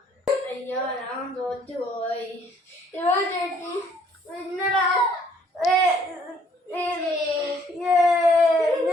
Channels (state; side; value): normal; both; correlation 0.62